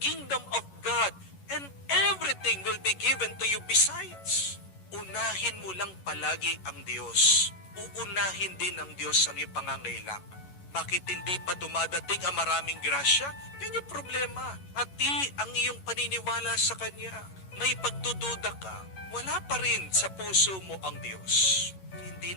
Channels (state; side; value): late; right; 11 ms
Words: of God, and everything will be given to you besides. Unahin mo lang palagi ang Diyos. Uunahin din ng Diyos ang iyong pangangailangan. Bakit hindi pa dumadating ang maraming grasya? Yan yung problema. At ang iyong paniniwala sa Kanya. May pagdududa ka. Wala pa rin sa puso mo ang Diyos. Hindi